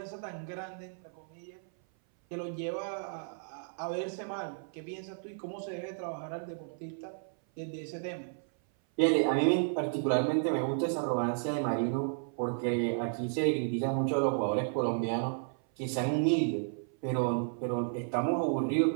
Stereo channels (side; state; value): left; silent; 56 dB below the other